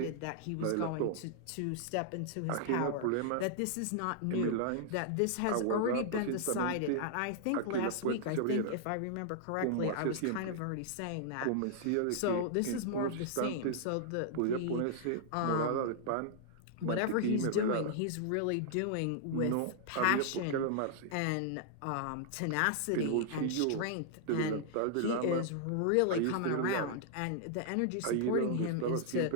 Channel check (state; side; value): different; both; correlation -0.01